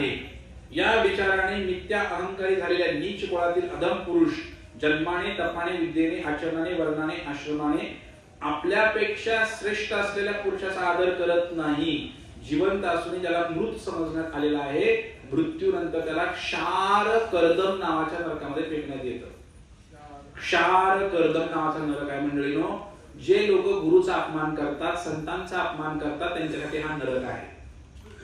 या विचाराने मिथ्या अहंकारी झालेल्या नीच कुळातील अधम पुरुष जन्माने, तपाने, विद्येने, आचरणाने, वर्णाने, आश्रमाने आपल्यापेक्षा श्रेष्ठ असलेल्या पुरुषाचा आदर करत नाही. जिवंत असून ज्याला मृत समजण्यात आलेला आहे, मृत्यूनंतर त्याला क्षार कर्दम नावाच्या नरकामध्ये फेकण्यात येतं. क्षार कर्दम नावाचा नरक आहे मंडळीनो. जे लोक गुरुचा अपमान करतात, संतांचा अपमान करतात, त्यांच्यासाठी हा नरक आहे.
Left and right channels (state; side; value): identical; both; correlation 1.00